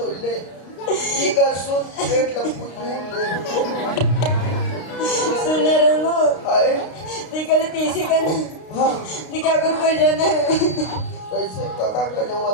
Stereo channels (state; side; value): late; right; 32 ms